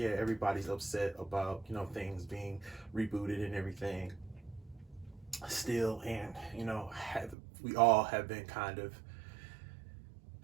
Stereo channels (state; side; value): drops out; left; at 7.4 s